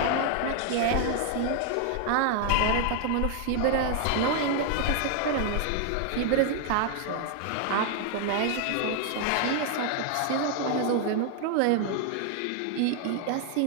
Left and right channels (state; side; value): different; both; correlation 0.00